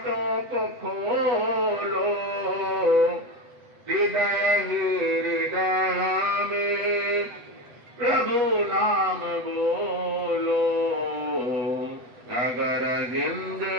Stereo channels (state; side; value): late; left; 8.0 ms